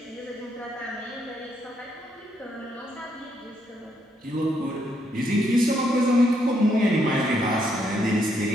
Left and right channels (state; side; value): normal; both; correlation 0.75